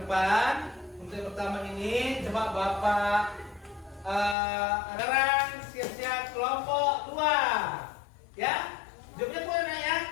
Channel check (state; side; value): drops out; right; at 4.4 s